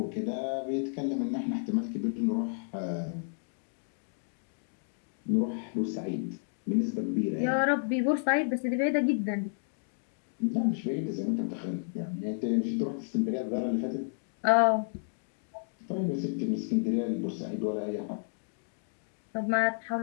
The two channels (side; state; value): right; silent; digital silence